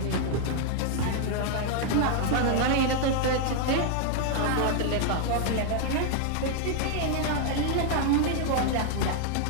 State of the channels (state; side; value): different; both; correlation 0.00